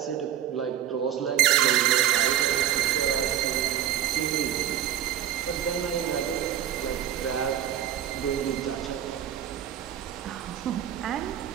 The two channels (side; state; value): left; quieter; 11.0 dB